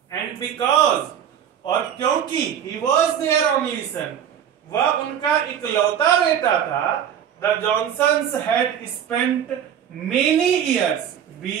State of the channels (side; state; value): left; quieter; 9.2 dB